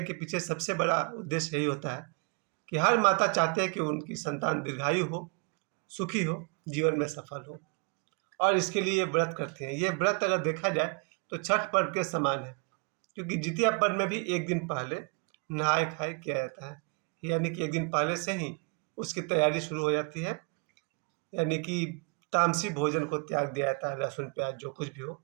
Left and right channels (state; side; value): quieter; left; 35.5 dB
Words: के पीछे सबसे बड़ा उद्देश्य यही होता है कि हर माता चाहते हैं कि उनकी संतान दीर्घायु हो, सुखी हो, जीवन में सफल हो और इसके लिए ये व्रत करते हैं। ये व्रत अगर देखा जाए तो छठ पर्व के समान है, क्योंकि जितिया पर्व में भी एक दिन पहले नहाय खाए किया जाता है। यानी कि एक दिन पहले से ही उसकी तैयारी शुरू हो जाती है। यानी कि तामसी भोजन को त्याग दिया जाता है, लहसुन प्याज जो कुछ भी हो